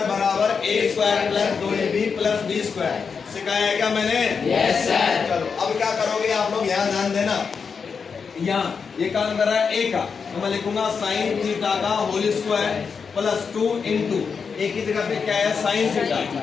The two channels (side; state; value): right; quieter; 5.8 dB